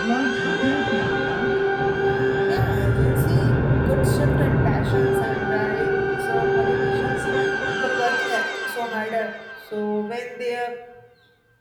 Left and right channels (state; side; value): identical; both; correlation 1.00